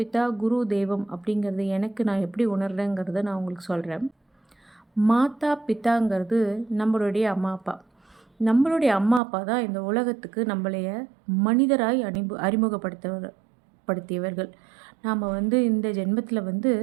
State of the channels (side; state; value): left; drops out; at 9.2 s